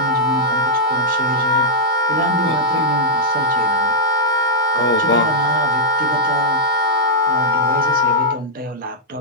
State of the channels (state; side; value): normal; both; correlation -0.07